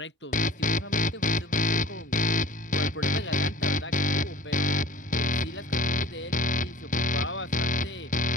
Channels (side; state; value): both; normal; correlation 0.47